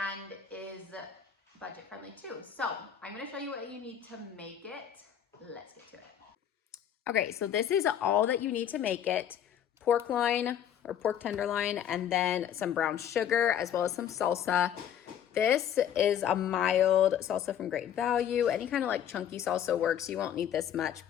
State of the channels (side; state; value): right; quieter; 9.5 dB